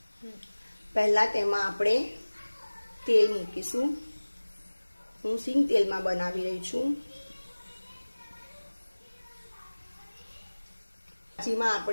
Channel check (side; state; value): both; inverted; correlation -1.00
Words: પહેલાં તેમાં આપણે તેલ મૂકીશું। હું સિંગ તેલમાં બનાવી રહી છું। ભાજીમાં